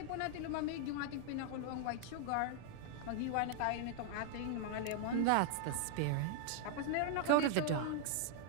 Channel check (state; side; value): different; both; correlation 0.00